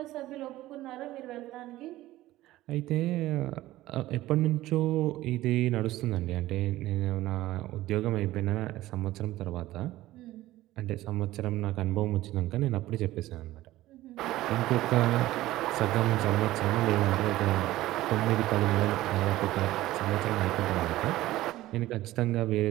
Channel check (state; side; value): quieter; left; 16.1 dB